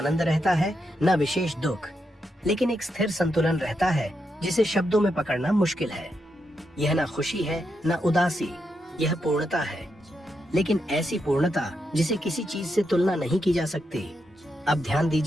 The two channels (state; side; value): normal; both; correlation 0.83